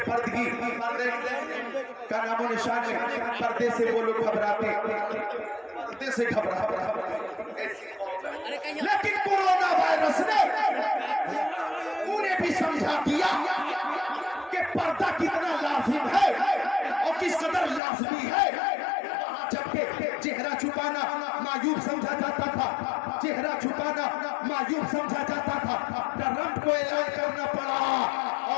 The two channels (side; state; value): right; drops out; at 17.8 s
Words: का नामो निशान है, पर्दे से वो लोग घबराते, पर्दे से घबरा। लेकिन कोरोना वायरस ने उन्हें भी समझा दिया कि पर्दा कितना लाजिम है और किस कदर लाजमी है। जबकि चेहरा छुपाना मायूब समझा जाता था, चेहरा छुपाना मायूब समझा जाता था, ट्रंप को ऐलान करना पड़ा।